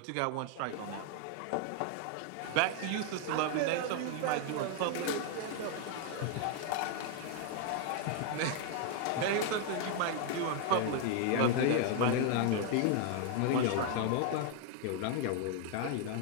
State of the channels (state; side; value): different; both; correlation 0.01